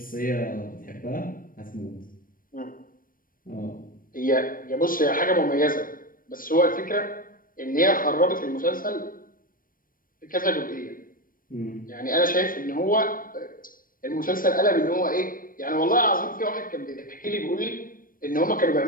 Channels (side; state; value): right; late; 0.41 ms